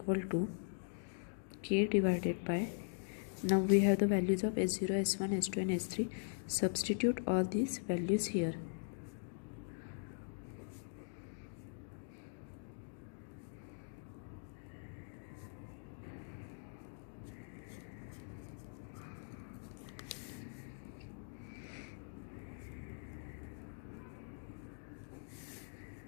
to k divided by, now we have the values of s0, s1, s2 and s3. Substitute all these values here.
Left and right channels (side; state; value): right; silent; digital silence